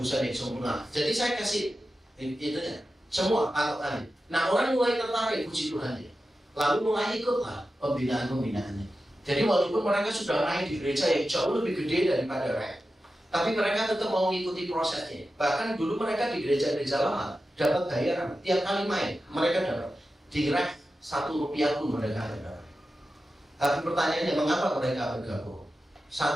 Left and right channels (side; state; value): both; normal; correlation 0.92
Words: yang sempurna. Jadi saya kasih itu ya, semua patokannya. Nah orang mulai tertarik, puji Tuhan ya. Lalu mulai ikutlah pembinaan-pembinaannya. Jadi walaupun mereka sudah main di gereja yang jauh lebih gede daripada REK, tapi mereka tetap mau mengikuti prosesnya. Bahkan dulu mereka di gereja-gereja lama dapat bayaran tiap kali main, mereka dapat di REK Rp1 pun mereka ada. Tapi pertanyaannya, mengapa mereka bergabung?